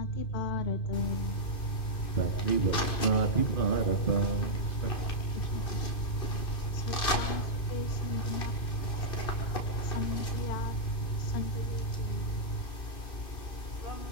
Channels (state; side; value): late; right; 2.7 ms